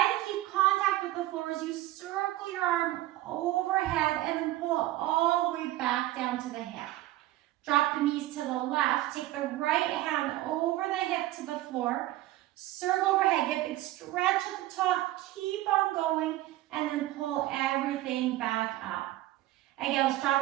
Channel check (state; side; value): quieter; left; 16.1 dB